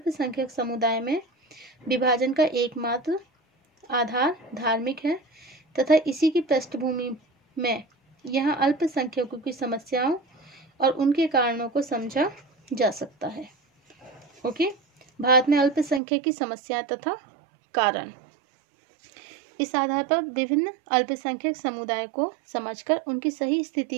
समुदाय में विभाजन का एकमात्र आधार धार्मिक है तथा इसी की पृष्ठभूमि में यहाँ अल्पसंख्यकों की समस्याओं और उनके कारणों को समझा जा सकता है। ओके, भारत में अल्पसंख्यक की समस्याएं तथा कारण। इस आधार पर विभिन्न अल्पसंख्यक समुदाय को समझकर उनकी सही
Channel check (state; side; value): drops out; left; at 16.0 s